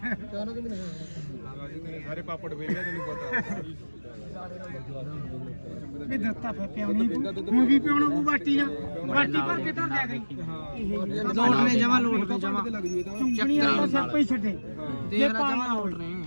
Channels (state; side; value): inverted; both; correlation -1.00